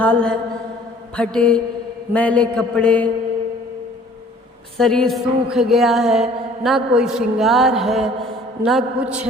है, फटे मैले कपड़े, शरीर सूख गया है, ना कोई श्रृंगार है ना कुछ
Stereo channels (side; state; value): both; normal; correlation 0.53